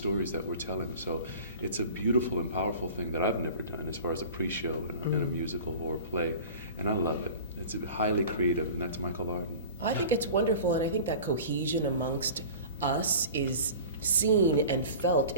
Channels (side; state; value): both; inverted; correlation -0.38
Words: that we're telling. So it's a beautiful and powerful thing that I've never done as far as a pre-show in a musical or a play, and I love it. It's highly creative, and that's Michael Arden. I think it's wonderful, and I think that cohesion amongst us is seen and felt